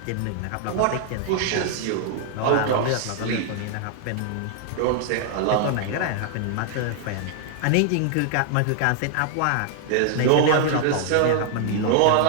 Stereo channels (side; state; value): both; different; correlation 0.00